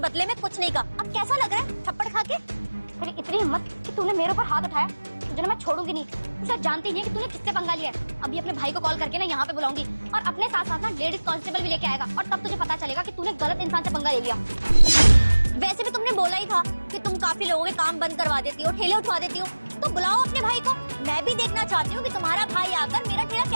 में कुछ नहीं कहा। अब कैसा लग रहा है थप्पड़ खा के? तेरी इतनी हिम्मत कि तूने मेरे ऊपर हाथ उठाया, तुझे ना मैं छोड़ूंगी नहीं। तू शायद जानती नहीं है कि तूने किससे पंगा लिया है। अभी अपने भाई को कॉल करके ना यहाँ पे बुलाऊंगी और अपने साथ साथ ना लेडीज कांस्टेबल भी लेके आएगा और तब तुझे पता चलेगा कि तूने गलत इंसान से पंगा ले लिया। वैसे भी तुमने बोला ही था कि तुम काफी लोगों के काम बंद करवा देती हो, ठेले उठवा देती हो, तो बुलाओ अपने भाई को। मैं भी देखना चाहती हूँ कि तुम्हारा भाई आकर मेरा ठेला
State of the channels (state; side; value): inverted; both; correlation -1.00